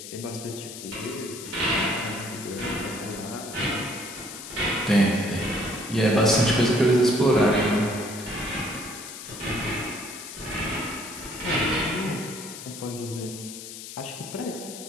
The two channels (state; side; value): noise; left; hiss, 11 dB below the sound